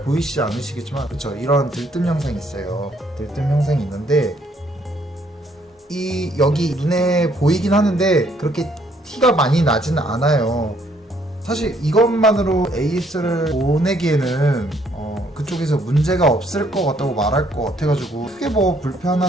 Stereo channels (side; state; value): both; normal; correlation 0.66